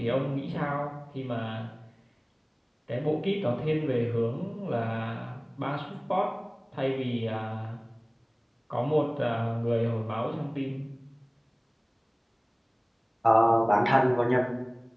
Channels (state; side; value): identical; both; correlation 1.00